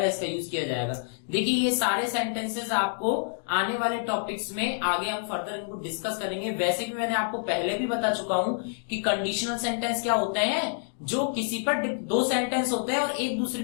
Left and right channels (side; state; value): right; silent; digital silence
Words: इसका यूज किया जाएगा। देखिए ये सारे सेंटेंसेस आपको आने वाले टॉपिक्स में आगे हम फर्दर इनको डिस्कस करेंगे। वैसे भी मैंने आपको पहले भी बता चुका हूं कि कंडीशनल सेंटेंस क्या होते हैं, जो किसी पर दो सेंटेंस होते हैं और एक दूसरे